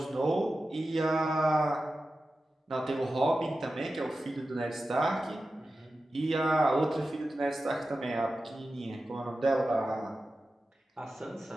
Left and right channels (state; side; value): normal; both; correlation 0.93